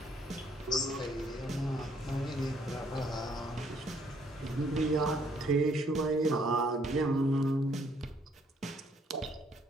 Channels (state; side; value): normal; both; correlation 0.67